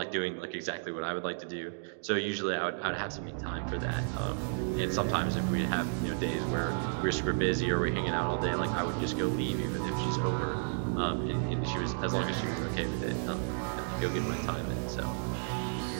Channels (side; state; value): left; silent; digital silence